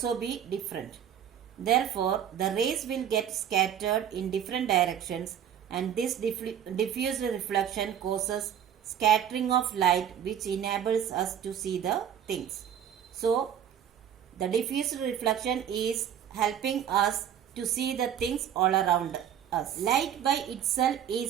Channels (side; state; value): left; quieter; 9.4 dB